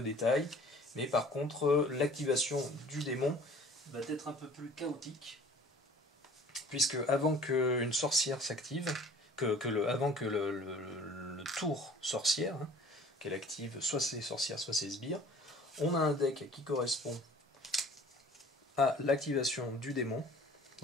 détail, mais par contre, l'activation du démon va être un peu plus chaotique, puisque avant qu'une sorcière s'active, avant que le tour sorcière, hein, qu'elle active soit ses sorcières, soit ses sbires, on a un deck qui correspond à l'activation du démon.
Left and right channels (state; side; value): normal; both; correlation 0.49